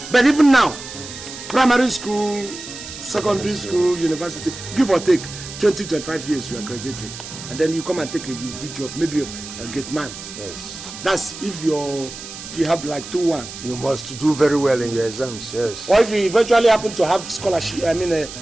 But even now, primary school, secondary school, university, give or take 20-25 years, you are graduated, and then you come and take a good job, maybe of a gate man. Yes. That's if you have like 2-1. You must do very well in your exams. Yes. Or if you eventually happen to have scholarship,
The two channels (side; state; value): right; noise; hiss, 12 dB below the sound